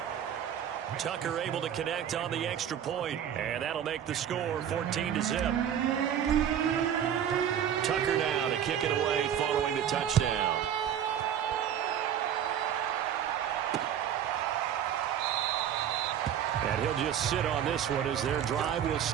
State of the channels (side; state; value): left; quieter; 9.5 dB